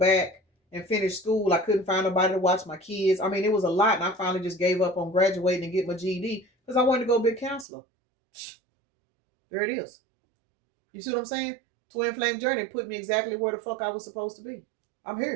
and finish school, I couldn't find nobody to watch my kids. I mean, it was a lot, and I finally just gave up on graduating and get my GED because I wanted to go be a counselor. There it is. You see what I'm saying? Twin Flame Journey put me exactly where the fuck I was supposed to be. I'm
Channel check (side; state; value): left; drops out; at 7.7 s